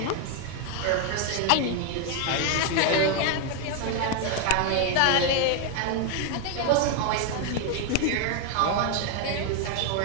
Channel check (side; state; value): both; different; correlation 0.01